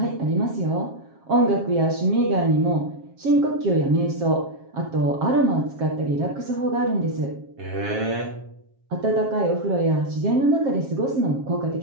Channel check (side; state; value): left; late; 7.4 ms